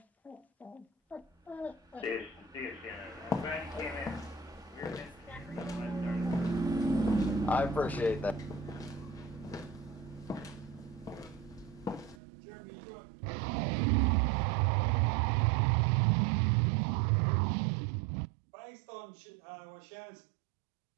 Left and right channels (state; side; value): drops out; left; at 12.2 s